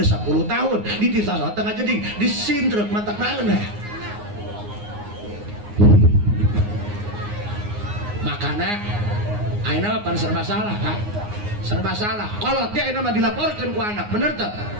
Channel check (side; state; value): left; late; 9.6 ms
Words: 10 tahun dititah sholat tengah jeding disindrek mata naeun makanya ayeuna mah serba salah Kak serba salah kolot dia ayeuna mah dilaporkeun ku anak bener teu